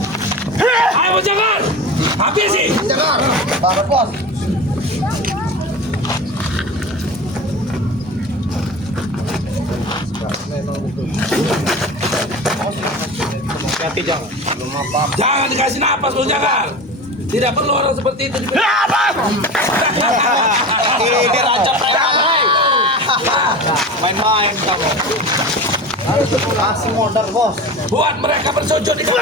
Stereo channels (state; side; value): normal; both; correlation 0.31